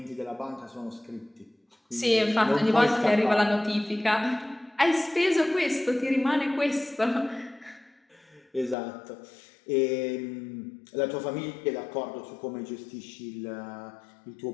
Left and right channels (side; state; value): right; drops out; at 8.8 s